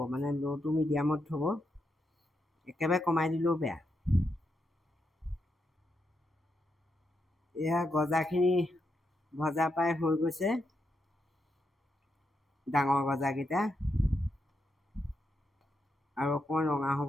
মানে ল' টু মিডিয়ামত থ'ব। একেবাৰে কমাই দিলেও বেয়া। এয়া গজাখিনি ভজা প্ৰায় হৈ গৈছে, ডাঙৰ গজাকেইটা। আৰু অকণমান ৰঙা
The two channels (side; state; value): both; normal; correlation 0.83